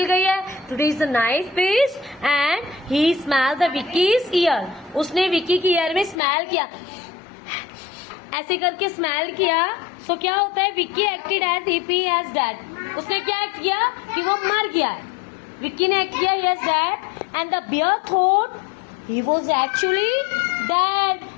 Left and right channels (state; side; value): drops out; right; at 6.2 s